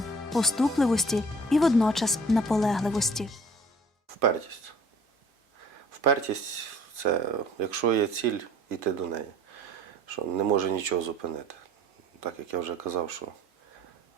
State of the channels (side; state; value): both; normal; correlation 0.51